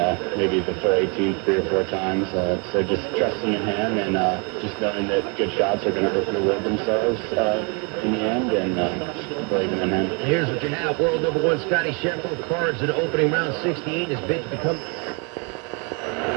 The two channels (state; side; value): quieter; left; 33.6 dB